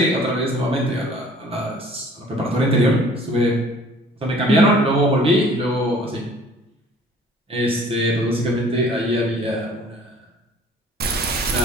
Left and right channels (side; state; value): both; normal; correlation 0.53